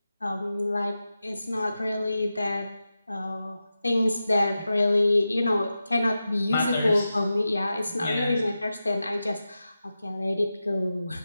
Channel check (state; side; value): inverted; both; correlation -0.92